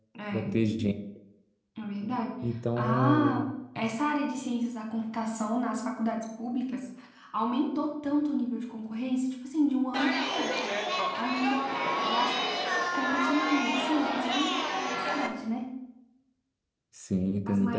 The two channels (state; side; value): identical; both; correlation 1.00